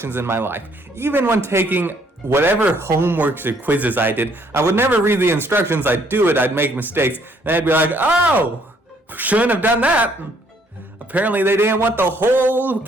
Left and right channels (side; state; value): both; normal; correlation 0.65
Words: in my life. Even when taking whatever homeworks or quizzes I did, I would never read the instructions. I'd do it, I'd make mistakes, and I'd be like, oh, shouldn't have done that. Apparently they didn't want the whole